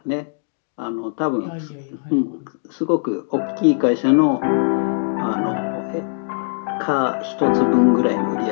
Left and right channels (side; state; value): right; silent; digital silence